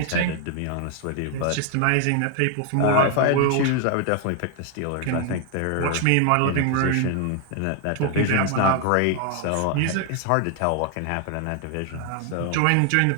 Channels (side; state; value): both; different; correlation 0.00